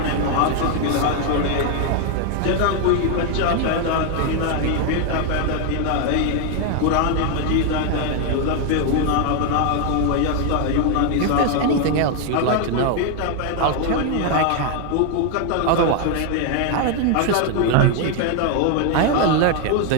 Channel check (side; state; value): both; different; correlation 0.01